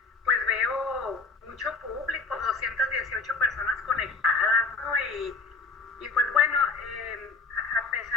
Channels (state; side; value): quieter; right; 4.3 dB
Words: Pues veo mucho público, 218 personas conectadas, ¿no? Y pues bueno, a